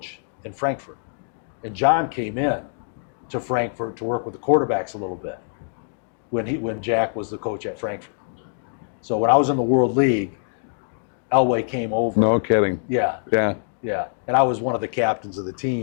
in Frankfurt, and John came in to Frankfurt to work with the quarterbacks a little bit when Jack was the coach at Frankfurt. So when I was in the World League, Elway came over. No kidding. Yeah. Yeah. Yeah. And I was one of the captains of the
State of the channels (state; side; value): silent; right; digital silence